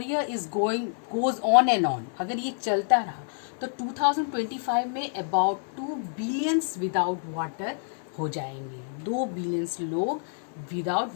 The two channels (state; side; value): silent; right; 60 dB below the other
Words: is goes on and on, अगर ये चलता रहा तो 2025 में about 2 billions without water हो जाएंगे. 2 बिलियंस लोग विदाउट